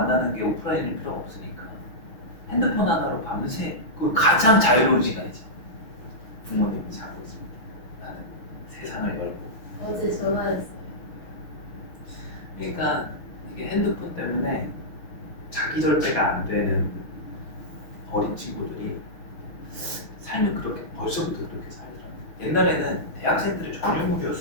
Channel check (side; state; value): right; late; 6.4 ms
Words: 게 오프라인일 필요가 없으니까 핸드폰 하나로 밤새 그 가장 자유로운 시간이지. 부모님이 자고 있습니다. 나는 세상을 열고. 어제 전화했어요. 그러니까 이게 핸드폰 때문에 자기 절제가 안 되는 어린 친구들이 삶을 그렇게 벌써부터 그렇게 살더라고요. 옛날에는 대학생들의